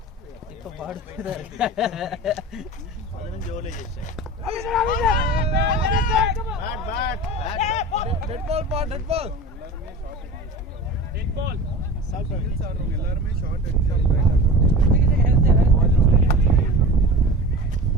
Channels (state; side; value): normal; both; correlation 0.34